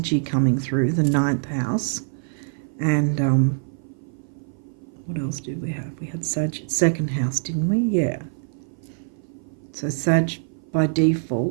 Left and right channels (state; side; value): silent; left; 57 dB below the other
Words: coming through, the 9th house. And what else did we have? We had Sag 2nd house, didn't we? Yeah. So Sag by